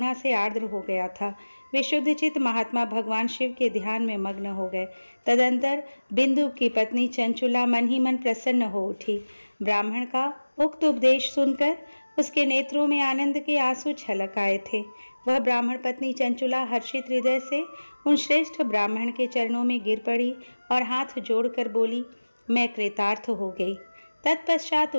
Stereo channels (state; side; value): inverted; both; correlation -1.00